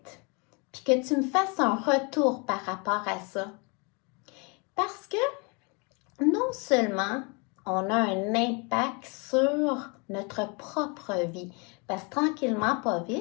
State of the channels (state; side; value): quieter; right; 32.2 dB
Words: puis que tu me fasses un retour par rapport à ça. Parce que non seulement on a un impact sur notre propre vie, parce que tranquillement, pas